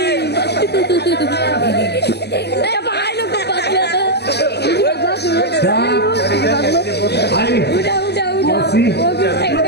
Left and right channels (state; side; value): late; right; 0.49 ms